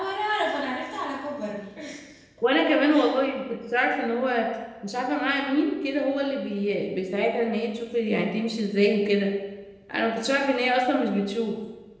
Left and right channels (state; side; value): identical; both; correlation 1.00